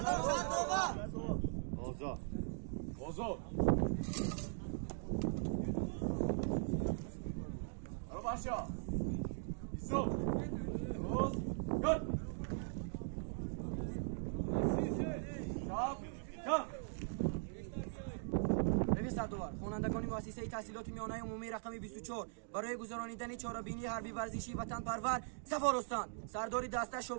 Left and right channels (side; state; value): left; silent; digital silence